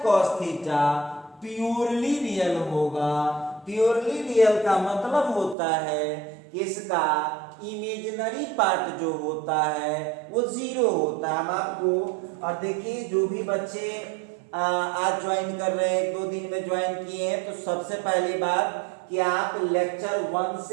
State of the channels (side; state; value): left; drops out; at 5.6 s